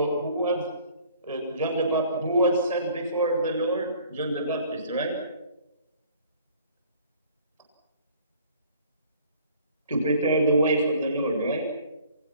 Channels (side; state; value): both; inverted; correlation -0.54